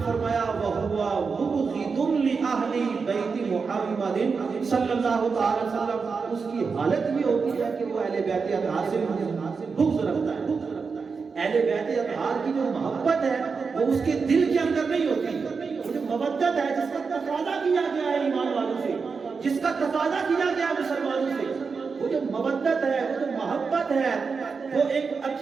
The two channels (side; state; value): left; quieter; 5.1 dB